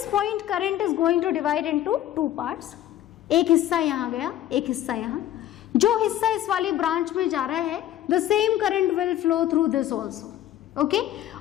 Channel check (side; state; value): right; quieter; 12.5 dB